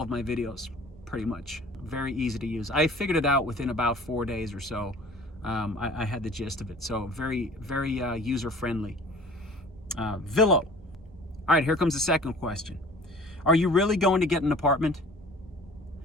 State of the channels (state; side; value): normal; both; correlation 0.47